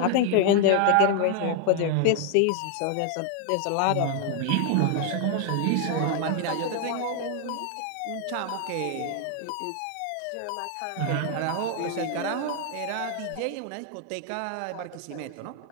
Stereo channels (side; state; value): both; different; correlation 0.00